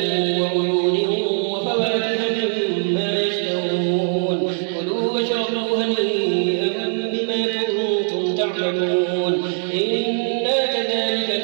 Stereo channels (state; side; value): silent; left; 59 dB below the other